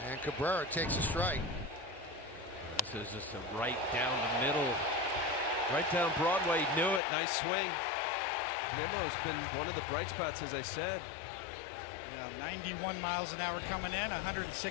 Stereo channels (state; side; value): drops out; right; at 7.0 s